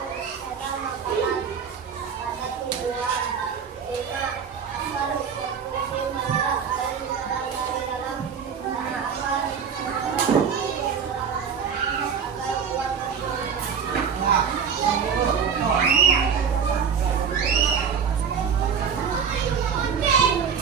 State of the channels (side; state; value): left; quieter; 6.8 dB